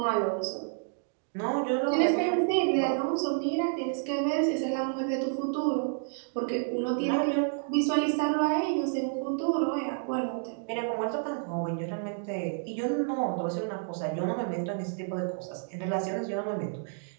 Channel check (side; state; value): left; silent; digital silence